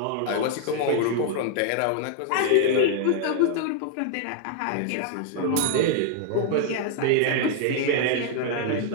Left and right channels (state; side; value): different; both; correlation 0.00